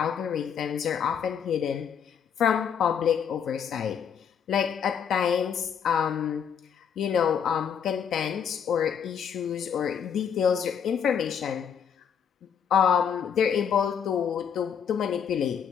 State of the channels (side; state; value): right; quieter; 7.7 dB